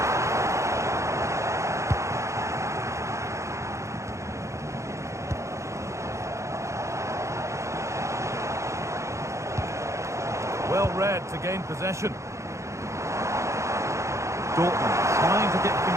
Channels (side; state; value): left; late; 0.14 ms